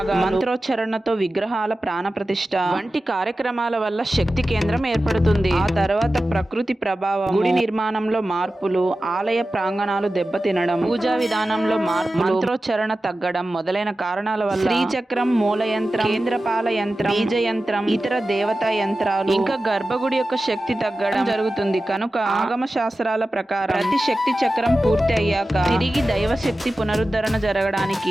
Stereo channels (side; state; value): both; normal; correlation 0.94